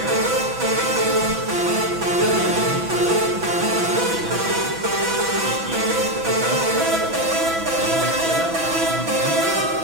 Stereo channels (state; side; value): late; left; 6.0 ms